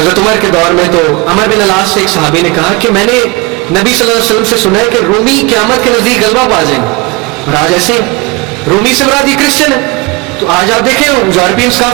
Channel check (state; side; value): quieter; left; 24.8 dB